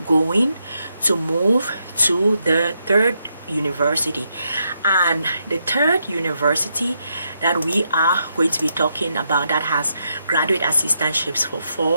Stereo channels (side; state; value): both; inverted; correlation -0.80